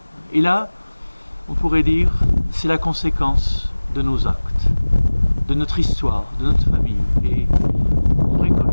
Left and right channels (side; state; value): both; inverted; correlation -1.00